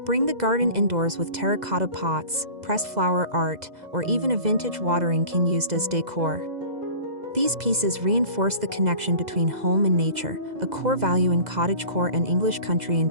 Bring the garden indoors with terracotta pots, pressed flower art, or even a vintage watering can used as decor. These pieces reinforce the connection between home and nature, a core value in cottagecore and English country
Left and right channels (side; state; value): left; late; 2.0 ms